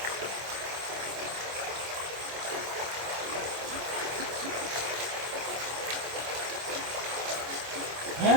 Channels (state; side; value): late; left; 25 ms